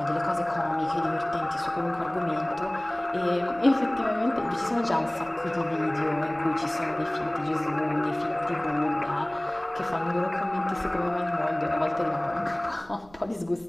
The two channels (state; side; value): noise; right; rumble, 26 dB below the sound